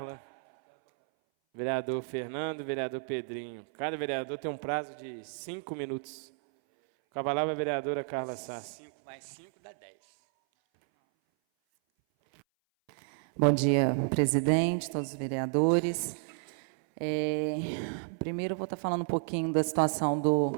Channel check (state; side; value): silent; left; 57 dB below the other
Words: vereador Fernando, vereador Pedrinho. Cada vereador tem um prazo de 5 minutos. Com a palavra a vereadora Carla Sassi. 5 mais 5 dá 10. Bom dia, presidente, todos os vereadores. Primeiro, eu vou estar falando um pouquinho da situação do